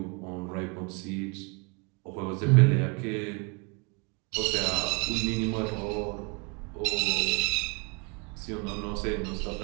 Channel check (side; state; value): left; quieter; 31.0 dB